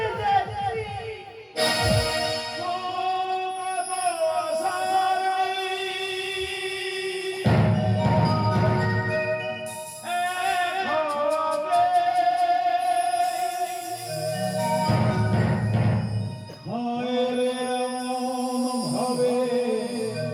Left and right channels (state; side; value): identical; both; correlation 1.00